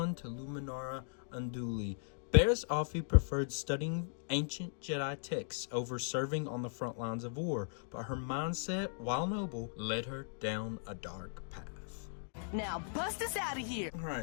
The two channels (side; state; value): right; silent; digital silence